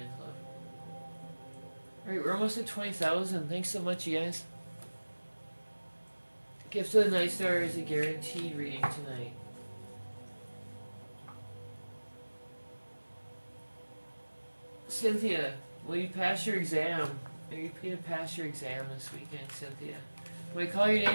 love. Alright, we're almost at 20,000. Thanks so much, you guys. Gift of the Night Star is a guaranteed reading tonight. Cynthia, will you pass your exam? Are you going to pass your exam this weekend, Cynthia? When I call your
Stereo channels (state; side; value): inverted; both; correlation -1.00